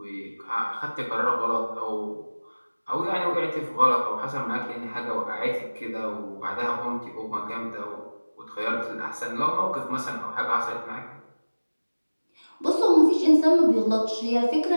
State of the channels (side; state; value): both; inverted; correlation -1.00